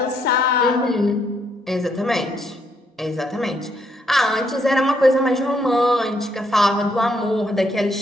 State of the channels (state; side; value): normal; both; correlation 0.73